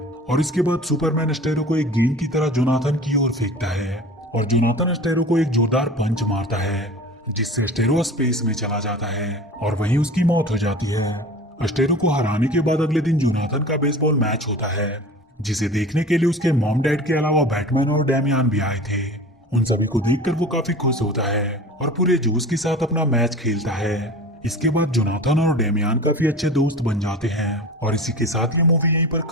इसके बाद सुपरमैन अस्टेरो को एक गेंद की तरह जोनाथन की ओर फेंकता है और जोनाथन अस्टेरो को एक जोरदार पंच मारता है, जिससे अस्टेरो स्पेस में चला जाता है और वहीं उसकी मौत हो जाती है। अस्टेरो को हराने के बाद अगले दिन जोनाथन का बेसबॉल मैच होता है, जिसे देखने के लिए उसके मॉम डैड के अलावा बैटमैन और डेमियन भी आए थे। उन सभी को देखकर वो काफी खुश होता है और पूरे जोश के साथ अपना मैच खेलता है। इसके बाद जोनाथन और डेमियन काफी अच्छे दोस्त बन जाते हैं और इसी के साथ ये मूवी यहीं पर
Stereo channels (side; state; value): both; normal; correlation 0.37